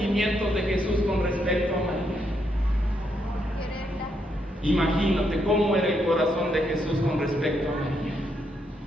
de Jesús con respecto a María? Imagínate cómo era el corazón de Jesús con respecto a María.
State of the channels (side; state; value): both; normal; correlation 0.78